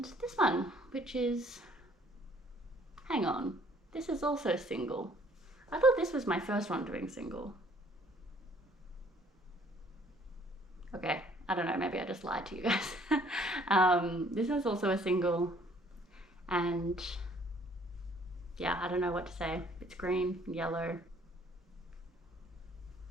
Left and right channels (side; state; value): both; normal; correlation 0.59